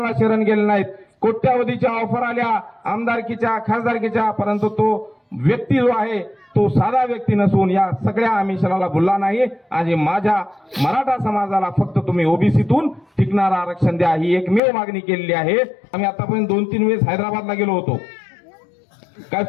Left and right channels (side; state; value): right; drops out; at 14.6 s